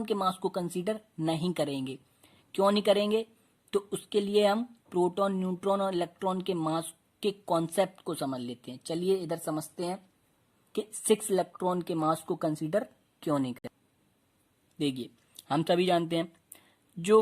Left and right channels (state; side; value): identical; both; correlation 1.00